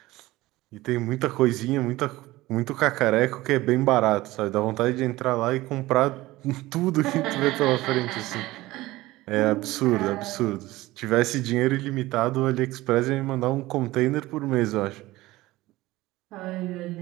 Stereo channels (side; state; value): left; quieter; 18.3 dB